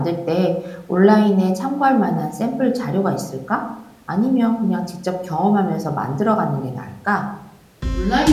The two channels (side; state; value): both; identical; correlation 1.00